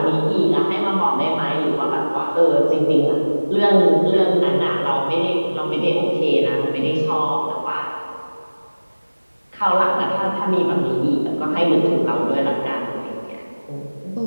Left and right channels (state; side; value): inverted; both; correlation -1.00